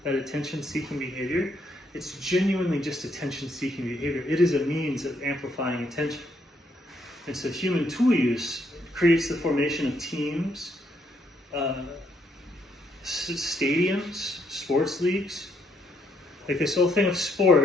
attention-seeking behavior, it's genuinely just attention-seeking behavior. It is a means of amplifying attention. And so human tool use creates the formation of teams, stadiums, sports leagues. Like this whole thing of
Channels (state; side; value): normal; both; correlation 0.73